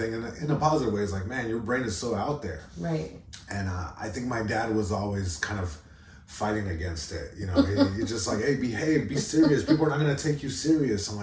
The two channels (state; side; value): identical; both; correlation 1.00